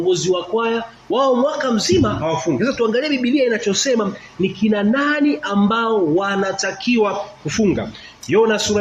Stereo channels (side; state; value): both; identical; correlation 1.00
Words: wa kwaya, wao mwaka mzima hawafungi. Sasa tuangalie Biblia inachosema ni kina nani ambao wanatakiwa kufunga. Yona